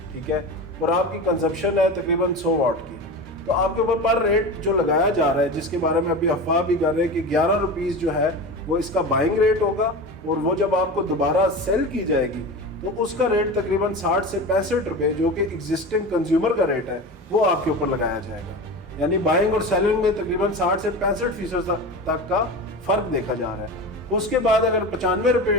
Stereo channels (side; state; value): both; normal; correlation 0.28